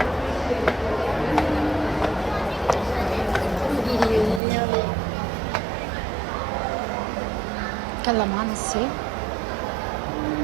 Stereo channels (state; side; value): drops out; left; at 4.4 s